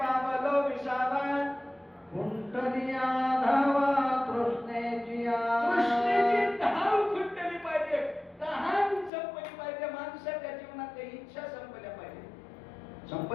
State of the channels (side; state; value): right; drops out; at 9.1 s